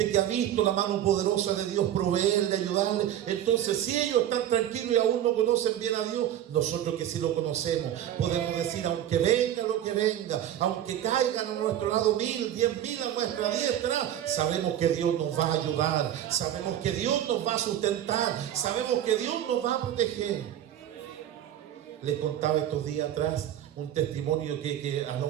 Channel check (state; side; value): quieter; left; 11.3 dB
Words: que ha visto la mano poderosa de Dios proveerle, ayudarle. Entonces, si ellos están tranquilos y aún no conocen bien a Dios, nosotros que sí lo conocemos, podemos decir, aunque venga lo que venga, aunque caigan a nuestro lado 1000, 10.000 a nuestra diestra, sabemos que Dios nos va a ayudar, sabemos que Dios nos va a sustentar, sabemos que Dios nos va a proteger. Les contaba estos días atrás un testimonio que a